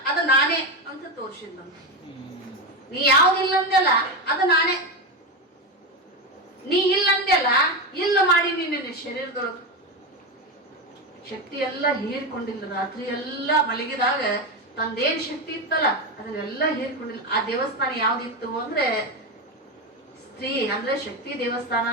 ಅದು ನಾನೇ ಅಂತ ತೋರ್ಸಿದ್ಲಂತ. ನೀ ಯಾವ್ದು ಇಲ್ಲ ಅಂದೆಲ್ಲ ಅದು ನಾನೇ, ನೀ ಇಲ್ಲ ಅಂದೆಲ್ಲ ಇಲ್ಲ ಮಾಡಿ ನಿನ್ನ ಶರೀರದೊಳಗ ಶಕ್ತಿ ಎಲ್ಲ ಹೀರ್ಕೊಂಡಿಲ್ಲ. ರಾತ್ರಿ ಎಲ್ಲ ಮಲಗಿದಾಗ ತಂದೇನ್ ಶಕ್ತಿ ಇತ್ತಲ್ಲ ಅದನ್ನೆಲ್ಲ ಹೀರ್ಕೊಂಡಿಲ್ಲ. ಆ ದೇವಸ್ಥಾನ ಯಾವ್ದಿತ್ತು ಅಂದ್ರೆ ಸ್ತ್ರೀ ಅಂದ್ರೆ ಶಕ್ತಿ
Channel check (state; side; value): normal; both; correlation 0.15